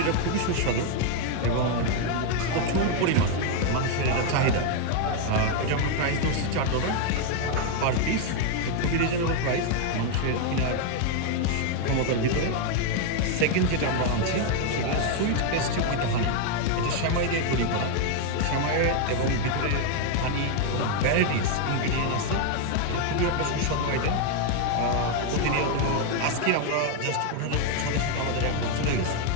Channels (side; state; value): both; different; correlation 0.01